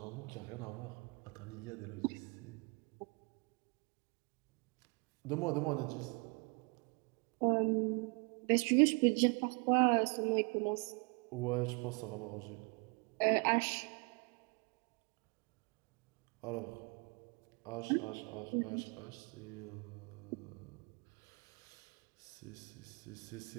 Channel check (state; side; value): quieter; left; 32.4 dB